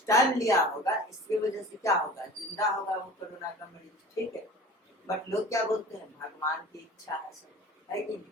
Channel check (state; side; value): normal; both; correlation 0.41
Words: टाइम लिया होगा, इसकी वजह से क्या होगा, जिंदा होगा वो कोरोना का मरीज, ठीक है। बट लोग क्या बोलते हैं, भगवान की इच्छा है सब, है कि नहीं,